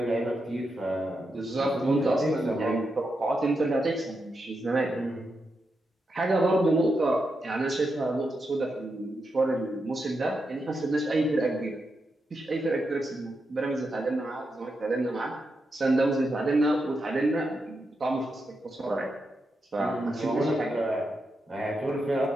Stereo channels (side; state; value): both; normal; correlation 0.85